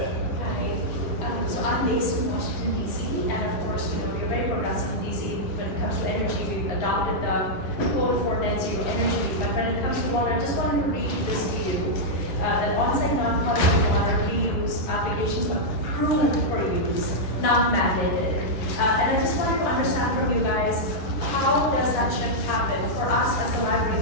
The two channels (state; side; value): late; right; 11 ms